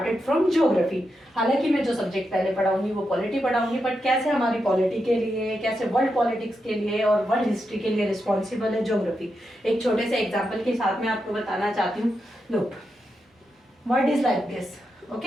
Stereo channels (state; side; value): normal; both; correlation 0.86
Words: from geography. हालांकि मैं जो सब्जेक्ट पहले पढ़ाऊंगी वो पॉलिटी पढ़ाऊंगी, बट कैसे हमारी पॉलिटी के लिए, कैसे वर्ल्ड पॉलिटिक्स के लिए और वर्ल्ड हिस्ट्री के लिए रिस्पॉन्सिबल है ज्योग्राफी, एक छोटे से एग्जाम्पल के साथ में आपको बताना चाहती हूँ। Look, word is like this.